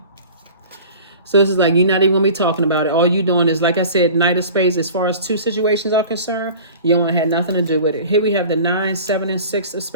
So this is like, you're not even going to be talking about it. All you doing is, like I said, knight of spades. As far as 2 situations are concerned, you don't want to have nothing to do with it. Here we have the 9, 7, and 6 of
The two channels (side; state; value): both; inverted; correlation -0.41